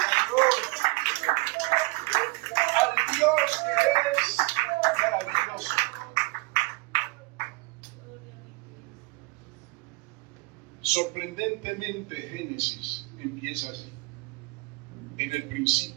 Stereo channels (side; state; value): left; quieter; 26.6 dB